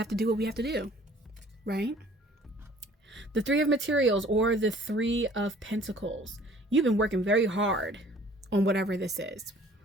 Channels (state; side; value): normal; both; correlation 0.53